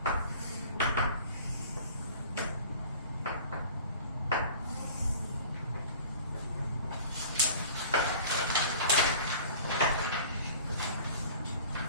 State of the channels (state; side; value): inverted; both; correlation -0.44